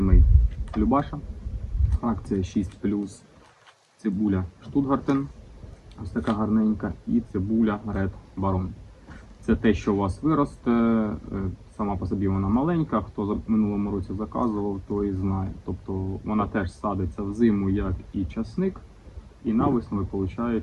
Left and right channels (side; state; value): both; identical; correlation 1.00